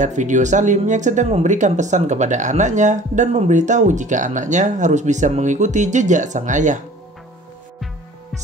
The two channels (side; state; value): both; normal; correlation 0.47